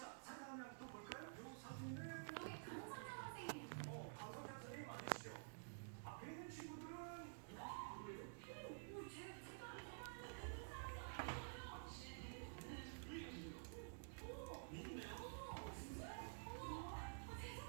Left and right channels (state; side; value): silent; left; digital silence